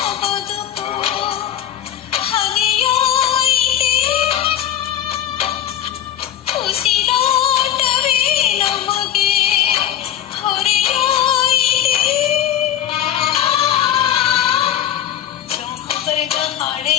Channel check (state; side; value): quieter; right; 11.2 dB